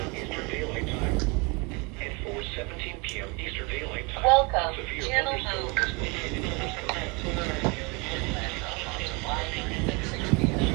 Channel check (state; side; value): quieter; left; 29.4 dB